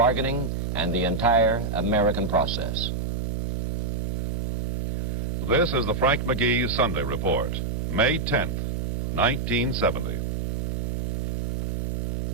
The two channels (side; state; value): right; noise; hum, 1 dB below the sound